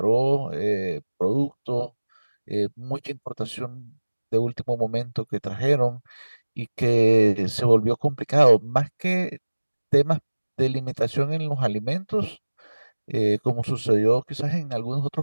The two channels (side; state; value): both; inverted; correlation -1.00